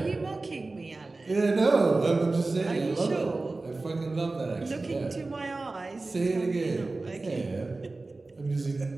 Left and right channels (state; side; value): quieter; left; 3.4 dB